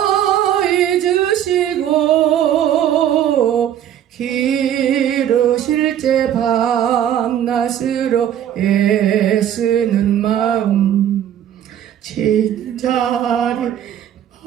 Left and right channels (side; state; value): left; quieter; 10.5 dB